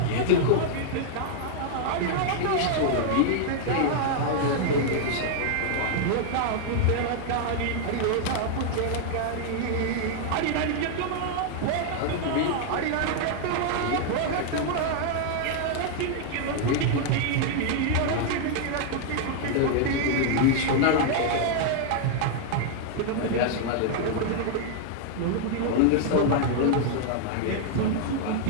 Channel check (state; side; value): different; both; correlation 0.00